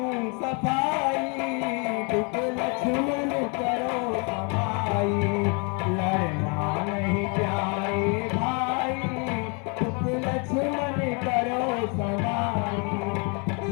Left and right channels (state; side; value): quieter; right; 34.6 dB